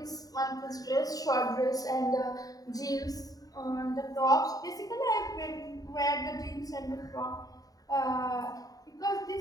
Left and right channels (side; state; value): right; late; 0.18 ms